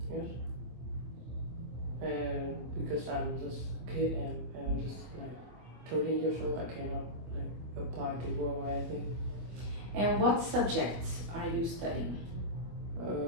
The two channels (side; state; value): left; late; 25 ms